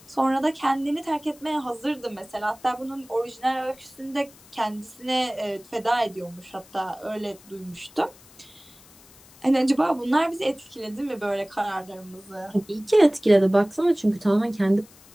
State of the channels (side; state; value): left; noise; hiss, 24 dB below the sound